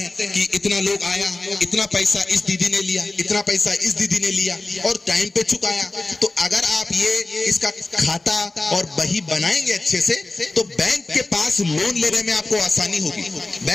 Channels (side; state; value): right; quieter; 3.0 dB